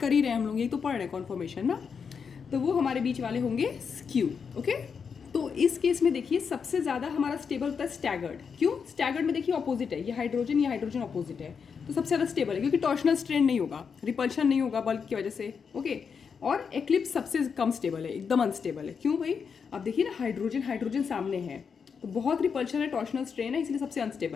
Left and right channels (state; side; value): quieter; right; 6.2 dB